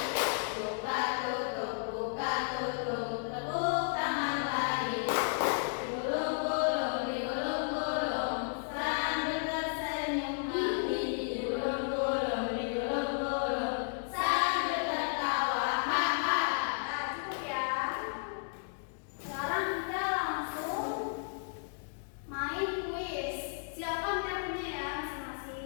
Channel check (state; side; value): silent; right; digital silence